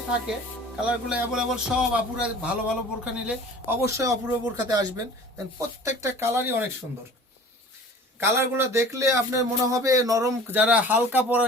থাকে। কালারগুলো অ্যাভেলেবল, সব আপুরা ভালো ভালো বোরখা নিলে অবশ্যই অপূর্ব বোরখাতে আসবেন। প্রত্যেকটা কালারই অনেক সুন্দর। কালারগুলো দেখলে আপনার মনে হবে নরম। যারা হালকা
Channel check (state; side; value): normal; both; correlation 0.44